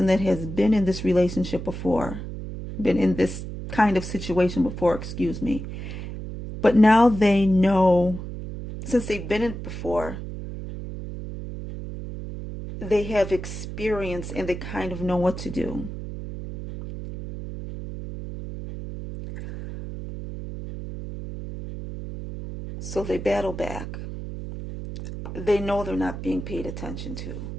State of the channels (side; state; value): right; noise; hum, 8 dB below the sound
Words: that has been in this relationship before, been in this kind of situation before, excuse me. But now they know, since they've been in it before, they have experience and they kind of know what to do. So they battle back. They know they're not being paid attention to.